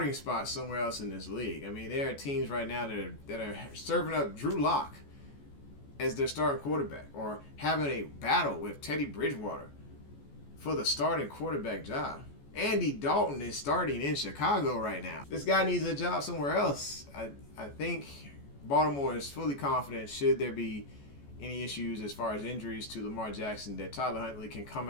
spot somewhere else in this league. I mean, there are teams right now that are serving up Drew Lock as their starting quarterback, or having a battle with Teddy Bridgewater for the starting quarterback job. Andy Dalton is starting in Chicago right now. This guy needs a job somewhere else. I think Baltimore is fully confident, should there be any issues as far as injuries to Lamar Jackson, that Tyler Huntley can come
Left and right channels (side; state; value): right; late; 14 ms